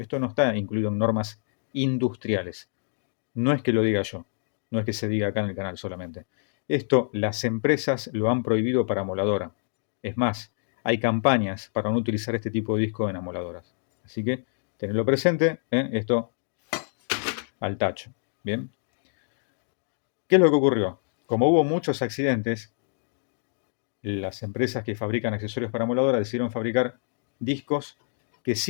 no está incluido en normas industriales. No es que lo diga yo, no es que se diga acá en el canal solamente. Esto las empresas lo han prohibido para amoladora. Es más, hay campañas para no utilizar este tipo de disco en amoladoras. Así que tenedlo presente, esto al tacho. Bien. ¿Qué es lo que ocurrió? Como hubo muchos accidentes, las empresas que fabrican accesorios para amoladora decidieron fabricar discos que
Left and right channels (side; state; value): right; silent; digital silence